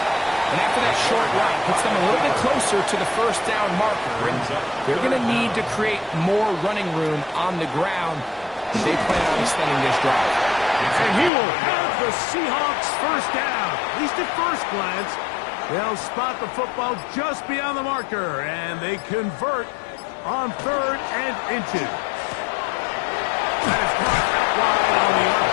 after that short run, puts them a little bit closer to the first down marker. And they're going to need to create more running room on the ground. They plan on extending this drive. And he will have the Seahawks first down. At least at first glance. They'll spot the football just beyond the marker, and they convert on 3rd and inches. That is caught out wide on the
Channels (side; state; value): right; drops out; at 11.3 s